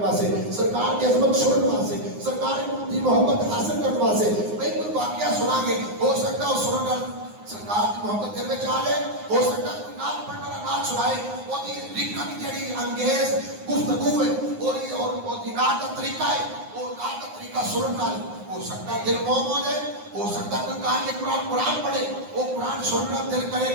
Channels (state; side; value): late; left; 9.6 ms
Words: سرکار کی عظمت سننے واسطے سرکار دی محبت حاصل کرنے واسطے بھئی کوئی واقعہ سنا گے ہو سکتا ہے سنن نال سرکار کی محبت دل میں آ جائے ہو سکتا ہے کوئی نعت پڑھنے والا نعت سنائے وہ دی رکت جڑی انگیز گفتگو ہے اور دی نعت کا طریقہ ہے وہ نعت کا طریقہ سنن نال ہو سکتا ہے دل موم ہو جائے ہو سکتا ہے کوئی قاری قرآن پڑھے وہ قرآن سننا دل کرے